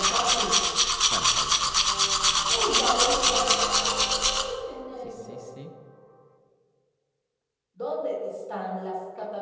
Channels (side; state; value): both; identical; correlation 1.00